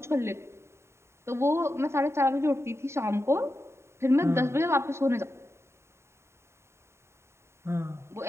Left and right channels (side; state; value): left; late; 0.13 ms